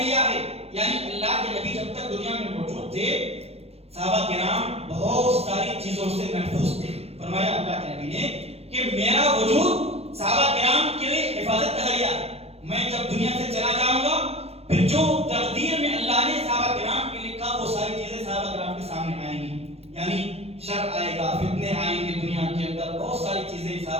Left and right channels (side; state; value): left; late; 0.29 ms